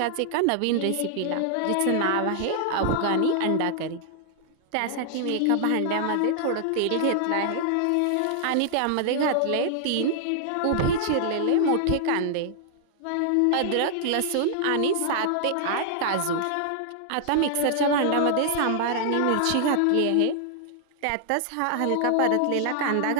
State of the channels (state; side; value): different; both; correlation -0.01